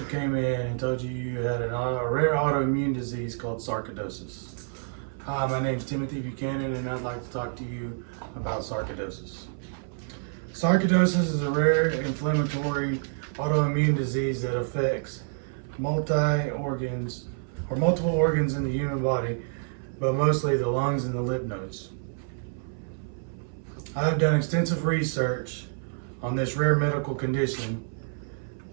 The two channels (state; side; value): silent; left; 59 dB below the other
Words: came in and told you you had a rare autoimmune disease called sarcoidosis? Hi, my name is Timothy Buchanan, and I'd like to talk to you about sarcoidosis. Sarcoidosis is a rare inflammatory autoimmune disease that affects multiple organs in the human body, but mostly the lungs and the lymph nodes. I have done extensive research on this rare medical condition,